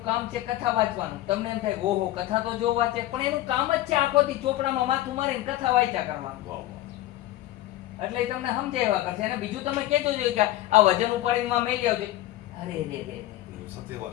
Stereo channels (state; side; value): quieter; right; 15.4 dB